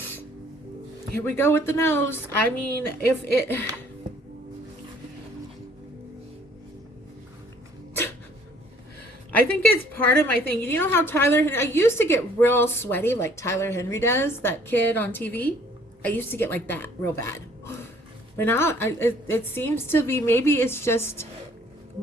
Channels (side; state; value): both; normal; correlation 0.58